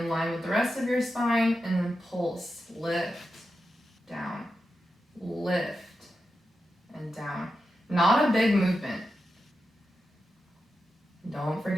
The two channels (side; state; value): both; normal; correlation 0.89